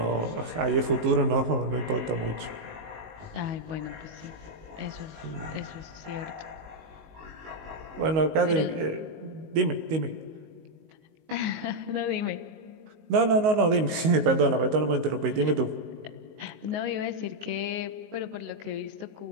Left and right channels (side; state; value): left; late; 19 ms